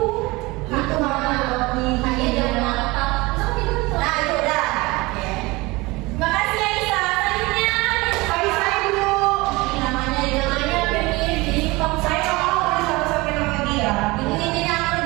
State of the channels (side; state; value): left; quieter; 22.7 dB